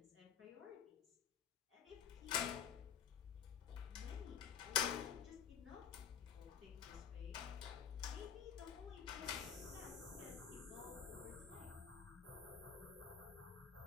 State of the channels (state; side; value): quieter; right; 8.0 dB